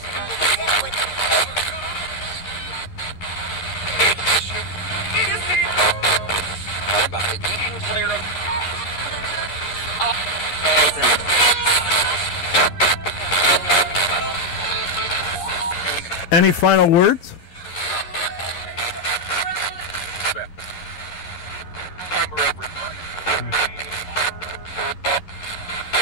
Any final words?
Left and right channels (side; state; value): right; late; 11 ms